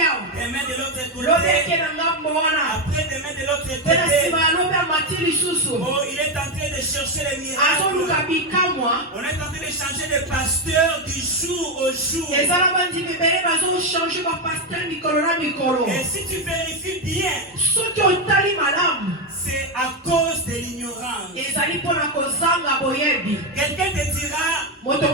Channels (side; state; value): both; normal; correlation 0.08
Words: Demain de l'autre côté. Après, demain de l'autre côté. Oh, il est en train de chercher les miracles. On est en train de changer de pasteur du jour au jour. Et si tu vérifies bien, c'est à cause de l'ignorance. Quelqu'un te dira, oh,